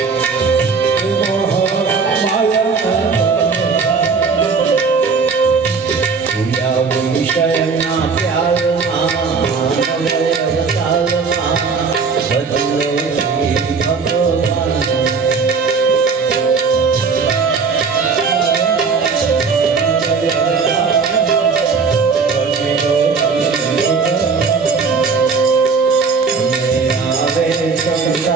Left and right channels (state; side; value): quieter; left; 5.1 dB